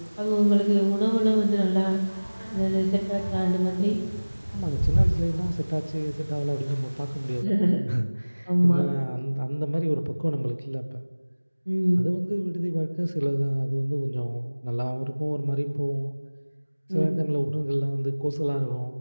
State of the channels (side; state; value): both; inverted; correlation -1.00